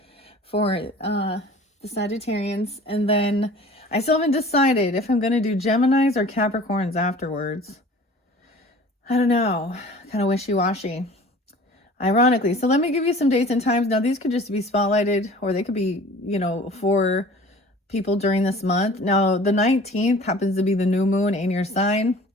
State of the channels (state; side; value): normal; both; correlation 0.45